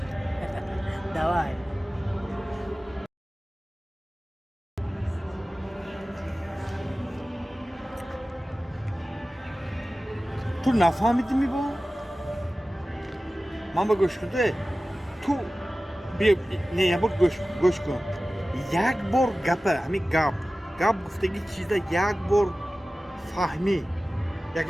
دوای تو نفهمیدی می با؟ من با گوش کرده تو بیا نه یه بار گوش کن یک بار گپه همین گپ گفتگی چیزا یک بار فهمی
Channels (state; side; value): normal; both; correlation 0.96